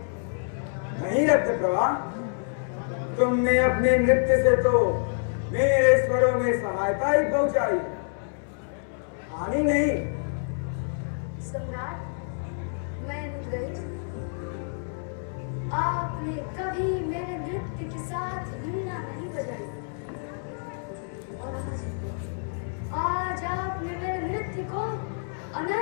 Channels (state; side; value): silent; right; 60 dB below the other